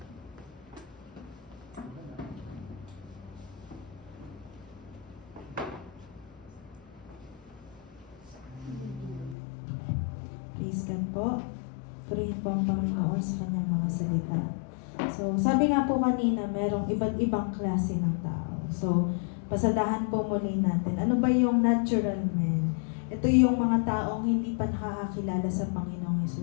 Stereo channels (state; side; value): drops out; right; at 9.3 s